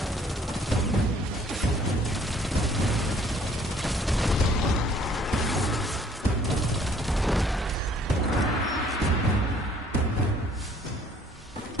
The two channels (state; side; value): normal; both; correlation 0.59